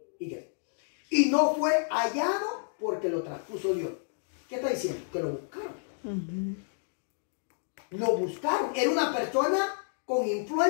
Y no fue hallado porque lo traspuso Dios. ¿Qué está diciendo? Que lo buscaron. Lo buscaron. Era una persona con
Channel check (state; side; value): silent; right; digital silence